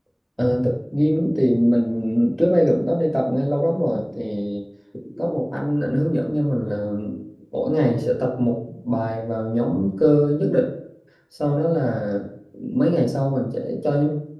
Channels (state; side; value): identical; both; correlation 1.00